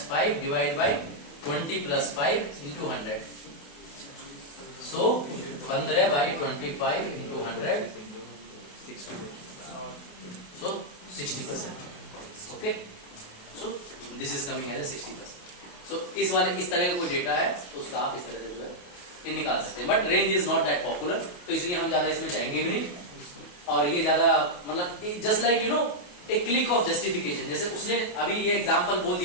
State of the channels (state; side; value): late; right; 28 ms